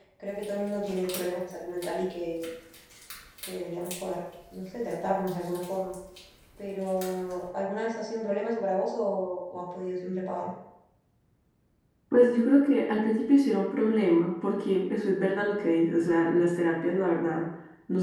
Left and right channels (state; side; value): identical; both; correlation 1.00